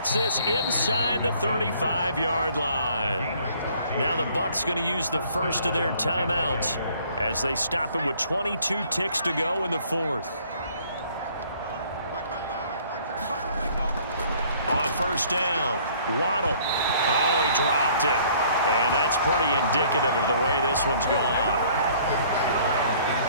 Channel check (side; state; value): both; inverted; correlation -0.57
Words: this inside the 35-yard line. Now the Bucs going to use the first of their timeouts as they stop him with 22 ticks to go in the fourth. On first down, Waddle. Oh, he dropped it. And that's pretty indicative of the way this one's gone.